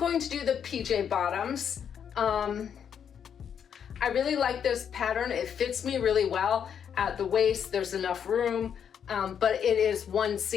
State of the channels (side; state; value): right; quieter; 8.0 dB